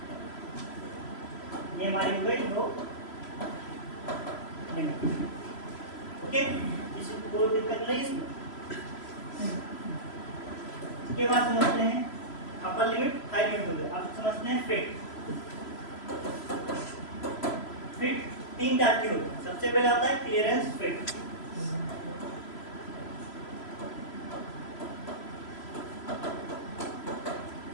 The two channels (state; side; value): late; right; 3.0 ms